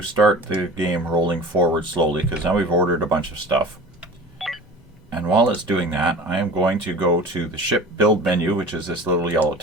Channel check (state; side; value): normal; both; correlation 0.39